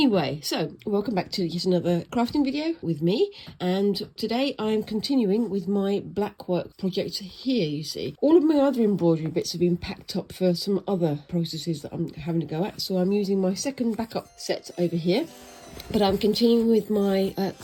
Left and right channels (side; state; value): both; identical; correlation 1.00